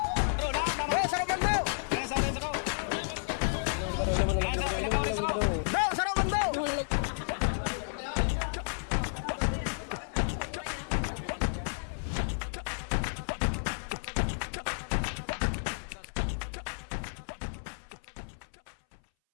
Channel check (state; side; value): silent; right; 57 dB below the other